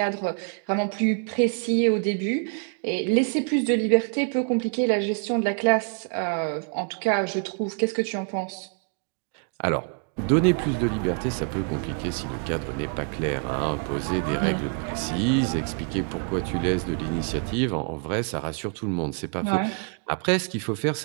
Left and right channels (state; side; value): quieter; left; 39.7 dB